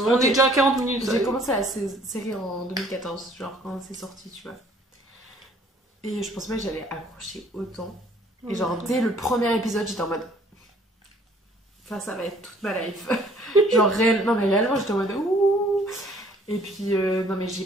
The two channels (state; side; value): normal; both; correlation 0.58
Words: est déjà à 40 minutes. J'ai commencé la série en 2014, genre quand c'est sorti, tu vois. Et je pensais pas que j'allais accrocher autant. Et genre, dès le premier épisode, j'étais en mode... Ça va être toute ma life. Genre, non mais réellement, j'étais en mode... Ouh. Et puis, non mais j'ai